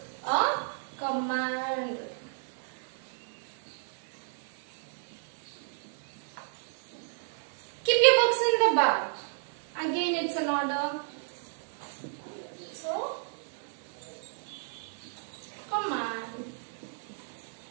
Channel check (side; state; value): left; silent; 56 dB below the other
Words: a command. Keep your books in the bag. Again, it's an order. So, command.